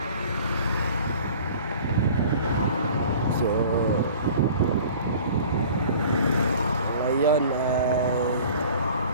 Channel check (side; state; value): both; inverted; correlation -0.46